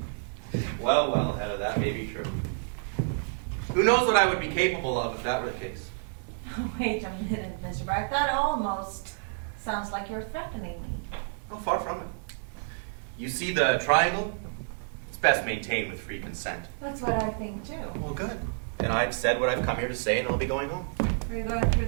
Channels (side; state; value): left; silent; digital silence